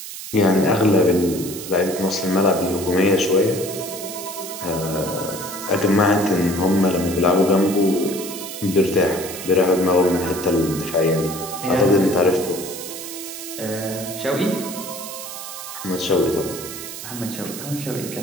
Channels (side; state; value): right; noise; hiss, 10 dB below the sound